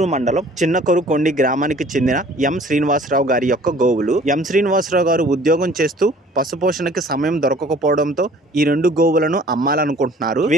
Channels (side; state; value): both; normal; correlation 0.52